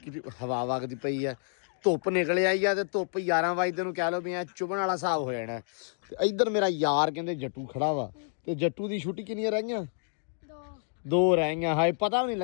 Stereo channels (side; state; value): right; silent; digital silence